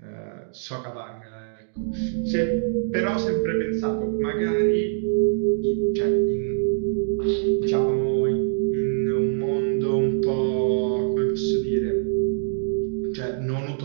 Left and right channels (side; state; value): left; silent; digital silence